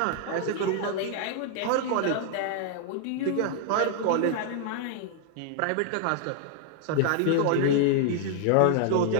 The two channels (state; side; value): different; both; correlation 0.00